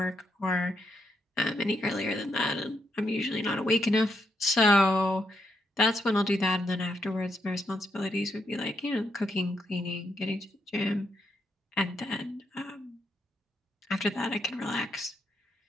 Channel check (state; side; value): normal; both; correlation 0.79